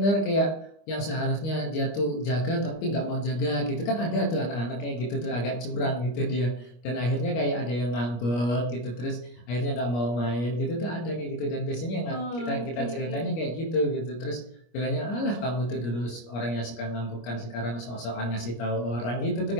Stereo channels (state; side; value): late; right; 25 ms